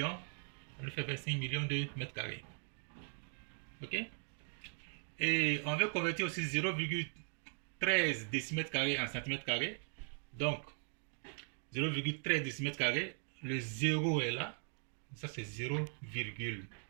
Ça nous fait 25 millions de mètres carrés. Ok? Et on veut convertir aussi 0,13 décimètres carrés en centimètres carrés. Donc 0,13 décimètres carrés. Le 0 est là. Ça c'est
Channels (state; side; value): silent; left; 52 dB below the other